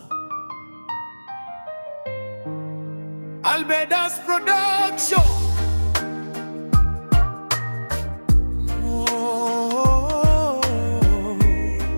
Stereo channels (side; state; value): both; inverted; correlation -1.00